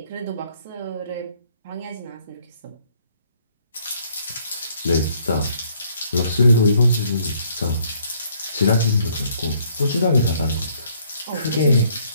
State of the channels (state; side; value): inverted; both; correlation -0.65